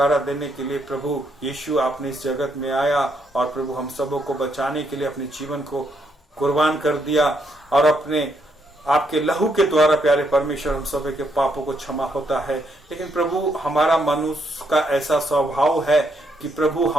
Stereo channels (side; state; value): both; normal; correlation 0.75